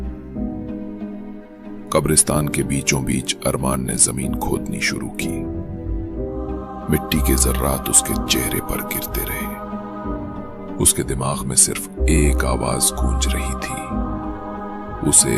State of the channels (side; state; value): both; identical; correlation 1.00